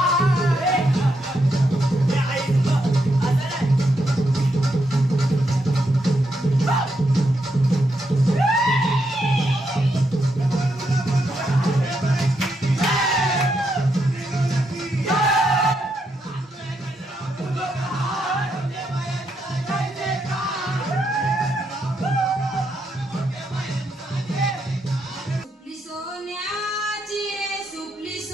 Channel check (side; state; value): both; normal; correlation 0.80